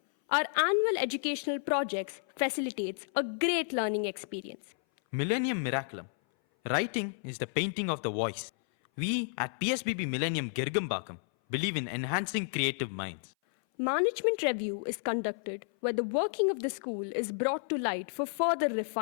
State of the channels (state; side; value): silent; right; 57 dB below the other